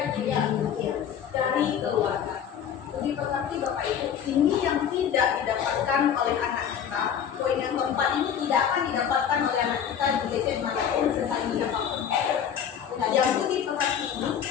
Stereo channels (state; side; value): quieter; right; 8.5 dB